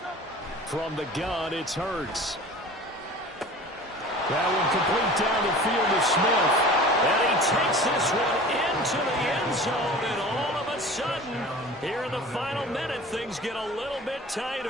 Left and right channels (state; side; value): normal; both; correlation 0.41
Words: From the gun, it's Hurts. That one complete down the field to Smith. And he takes this one into the end zone. And all of a sudden, here in the final minute, things get a little bit